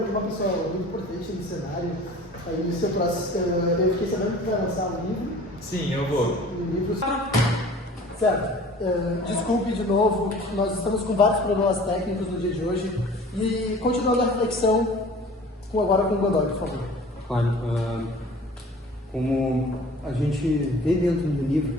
uma pessoa muito importante no cenário. Aí no seu próximo, eu fiquei sabendo que vai lançar um livro. Sim, eu vou. Um livro. Certo. Desculpe de novo, nós estamos com vários problemas técnicos no dia de hoje. E continuando a reflexão, agora com o Godoy, por favor. Claro, como a gente vê dentro do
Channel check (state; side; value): normal; both; correlation 0.45